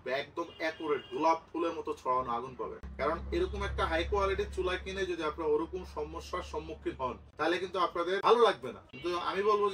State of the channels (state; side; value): identical; both; correlation 1.00